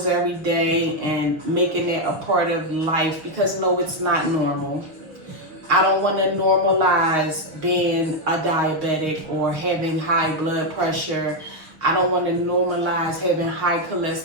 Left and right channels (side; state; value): left; late; 6.2 ms